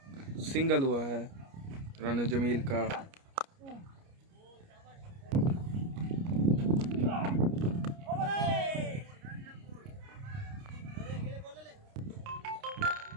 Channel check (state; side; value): late; left; 29 ms